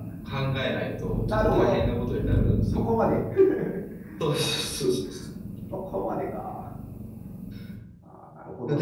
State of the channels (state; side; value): identical; both; correlation 1.00